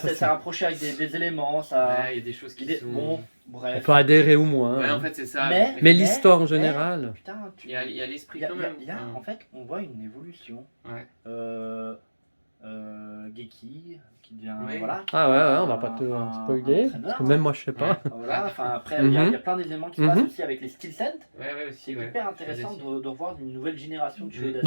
c'est c'est- rapproché avec des éléments, ça. Ouais, il y a des choses qui il est- sont. bon, On bref. peut adhérer ou moins. Ouais, hein. en fait, c'est ça. Mais l'histoire en général. Putain, Il y a l'esprit il y a- quand il y a- même. il y a- en fait, on voit une évolution. Ouais. Geki, qui devient. Oui. Voilà, Ah ouais, on va pas te un spoiler, entraîneur, parce que même moi je sais pas. Voilà, enfin, après, il y a plein d'éléments qui se passent Mhm. aussi avec les skill sets. Ouais, ouais, C'est aussi. Ouais. hyper intéressant de revoir une nouvelle génération de Shueisha.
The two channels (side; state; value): both; inverted; correlation -1.00